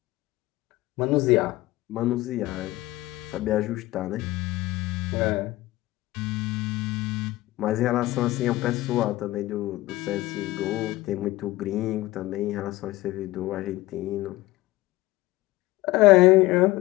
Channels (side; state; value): right; quieter; 18.3 dB